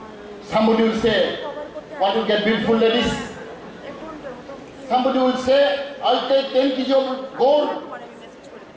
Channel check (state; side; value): identical; both; correlation 1.00